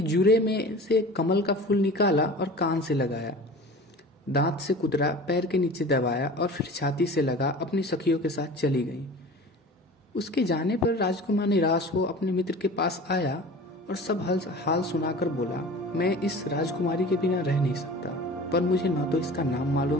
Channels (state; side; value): normal; both; correlation 0.39